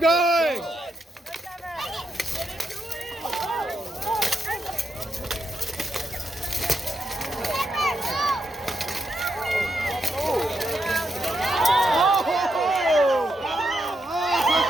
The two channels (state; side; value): normal; both; correlation 0.83